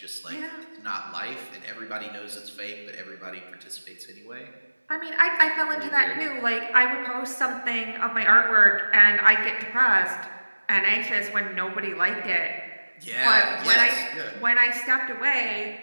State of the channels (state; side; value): inverted; both; correlation -1.00